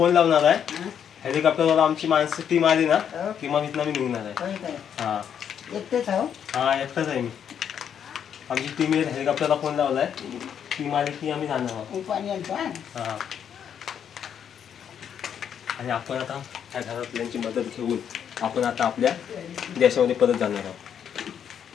लावणार आहे. हेलिकॉप्टरला आमची माणसं टीम आली ना की मग इथनं मी निघणार आहे. हा एकटेच आहो. हा एकटाच आहे मी. आमची टीम हेलिकॉप्टरला फोन लावलाय. टीम आली की आम्ही जाणार आहोत. पाणी आणतो. हा आणि आपण आता त्या घरातल्यांची मदत घेऊन आपण आता आपल्या देशामध्ये परत जाणार आहोत.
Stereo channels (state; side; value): quieter; right; 8.5 dB